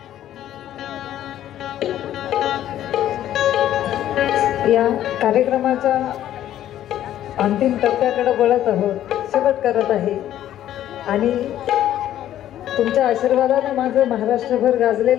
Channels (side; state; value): right; quieter; 12.0 dB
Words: या कार्यक्रमाच्या अंतिम टप्प्याकडे वळत आहोत, शेवट करत आहे आणि तुमच्या आशीर्वादाने माझं महाराष्ट्रभर